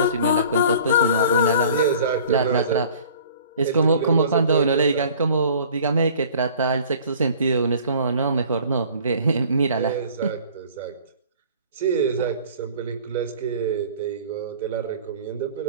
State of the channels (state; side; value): inverted; both; correlation -0.49